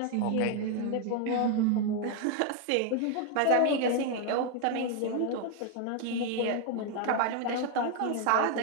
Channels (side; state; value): both; different; correlation 0.01